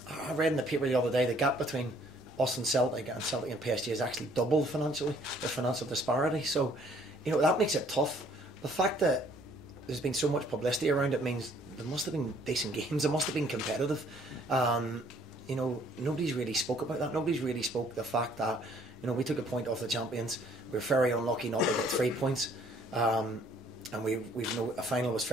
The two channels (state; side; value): normal; both; correlation 0.61